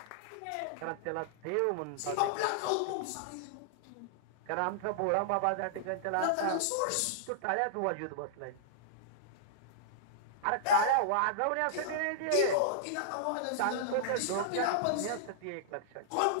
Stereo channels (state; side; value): different; both; correlation -0.01